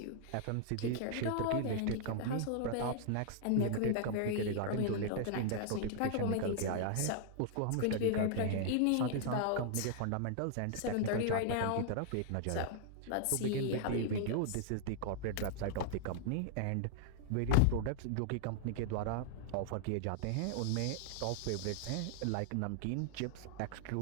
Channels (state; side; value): different; both; correlation -0.01